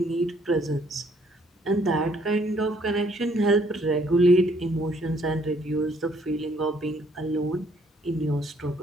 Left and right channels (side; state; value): both; normal; correlation 0.65